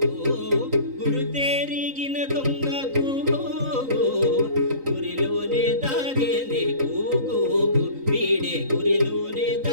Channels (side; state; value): left; late; 3.8 ms